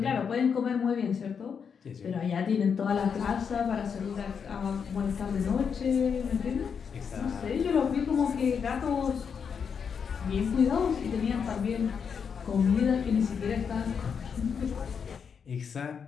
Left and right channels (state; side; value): quieter; right; 6.6 dB